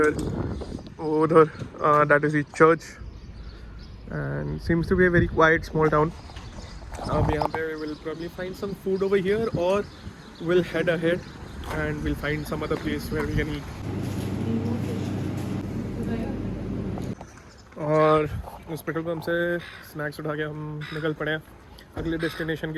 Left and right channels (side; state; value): both; identical; correlation 1.00